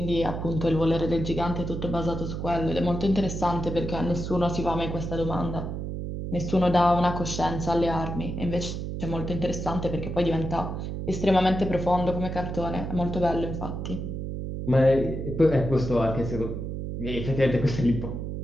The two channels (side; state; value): right; noise; hum, 5 dB below the sound